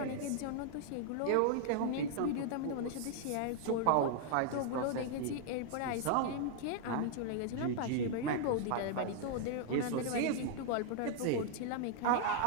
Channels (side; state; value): both; different; correlation 0.00